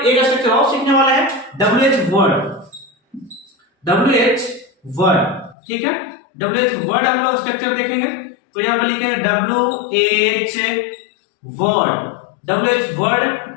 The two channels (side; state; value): right; drops out; at 5.6 s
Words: एक स्ट्रक्चर और सीखने वाला है, WH वर्ड। ठीक है, WH वर्ड हम लोग स्ट्रक्चर देखेंगे। तो यहां पर लिखेंगे WH word